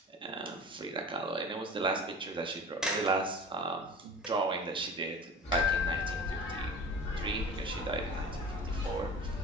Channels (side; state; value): both; normal; correlation 0.38